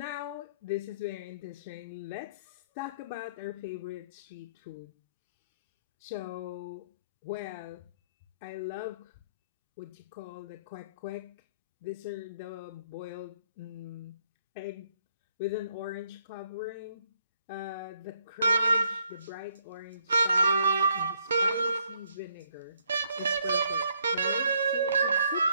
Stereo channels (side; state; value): both; inverted; correlation -0.70